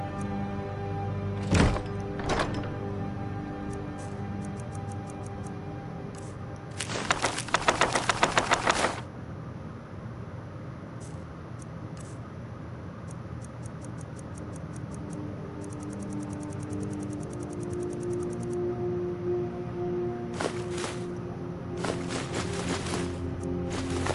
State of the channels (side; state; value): both; identical; correlation 1.00